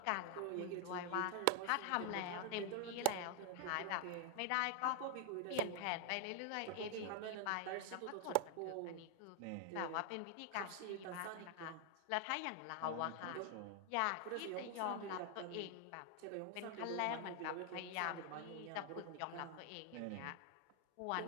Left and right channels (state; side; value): different; both; correlation 0.00